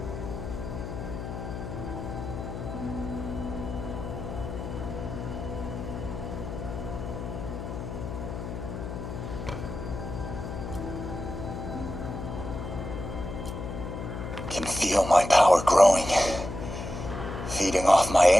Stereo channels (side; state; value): left; noise; hum, 7 dB below the sound